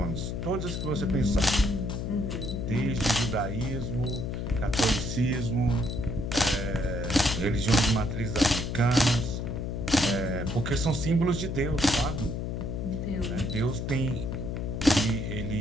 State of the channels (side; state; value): left; noise; hum, 3 dB below the sound